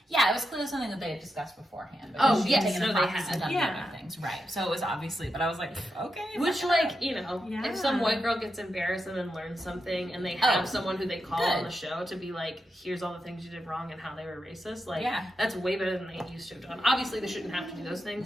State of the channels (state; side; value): normal; both; correlation 0.87